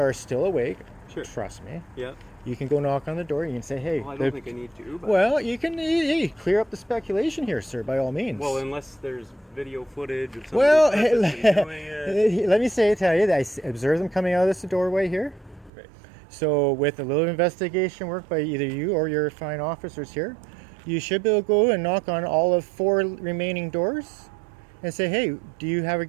are still awake. Sure. Trust me. Yeah. You can go knock on the door. You can say, "Hey." Well, I don't think I need to. But Well, you can clear up the speculation here, sir, by all means. well, unless there's video footage of somebody Well, purposely doing it. let me tell you that I observed them coming out of this doorway here. Right. So with a little investigation work by either you or your fine officers here, you should be able to go and knock on all of 4 remaining doors and say, hey, do you have a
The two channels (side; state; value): left; drops out; at 15.7 s